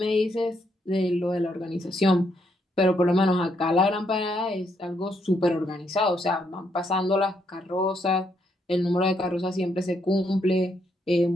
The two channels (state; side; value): normal; both; correlation 0.75